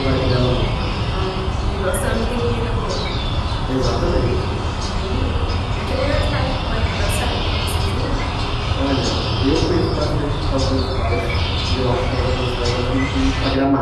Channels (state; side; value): identical; both; correlation 1.00